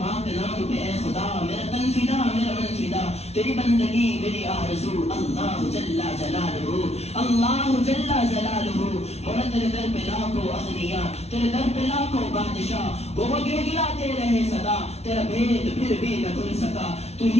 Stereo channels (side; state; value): right; late; 0.31 ms